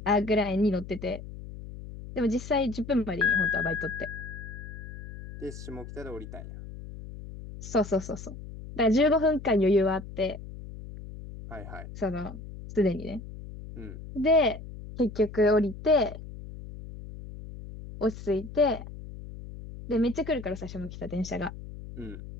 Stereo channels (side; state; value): left; noise; hum, 12 dB below the sound